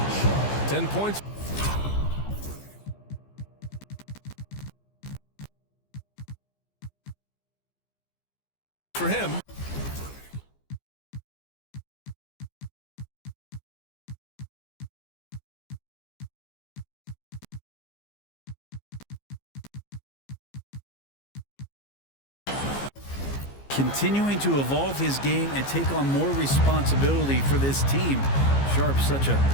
10 points. For him. Continuing to evolve his game and take on more responsibility for this team. Sharp's such a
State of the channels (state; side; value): late; right; 15 ms